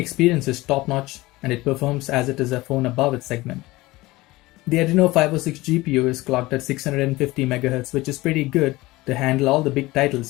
is top-notch and it performs as it is a phone above its segment. The ADRENO 506 GPU is clocked at 650 MHz, which is pretty good to handle all the big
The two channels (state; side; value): quieter; right; 19.8 dB